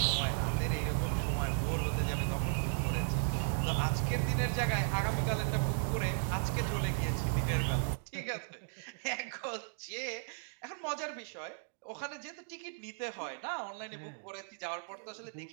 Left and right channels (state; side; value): silent; left; digital silence